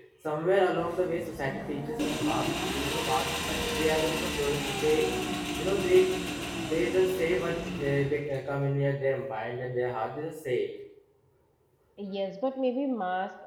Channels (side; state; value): both; identical; correlation 1.00